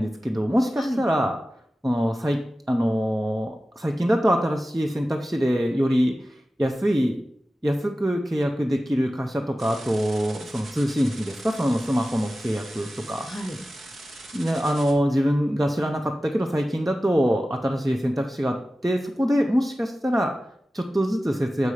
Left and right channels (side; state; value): both; normal; correlation 0.95